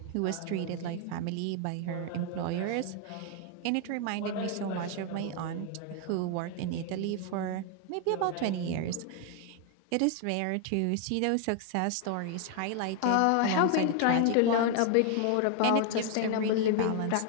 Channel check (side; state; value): both; different; correlation 0.00